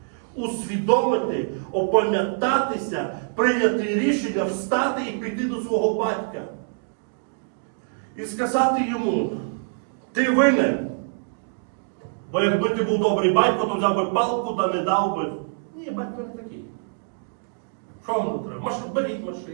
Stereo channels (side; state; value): left; silent; digital silence